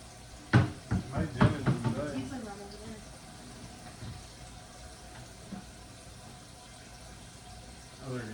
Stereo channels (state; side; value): identical; both; correlation 1.00